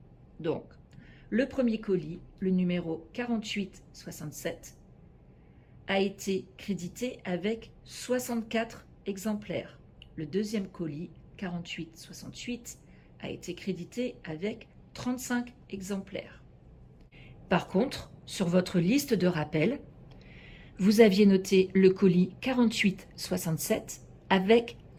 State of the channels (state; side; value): identical; both; correlation 1.00